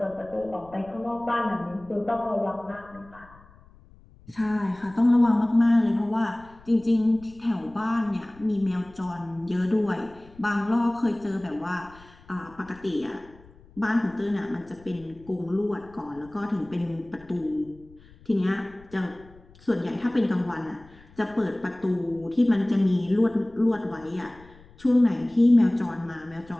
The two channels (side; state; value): left; noise; rumble, 25 dB below the sound